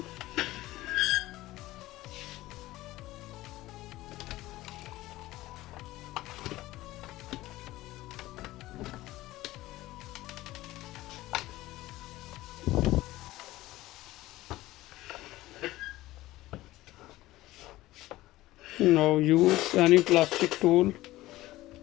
Now use any plastic tool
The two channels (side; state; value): right; quieter; 17.1 dB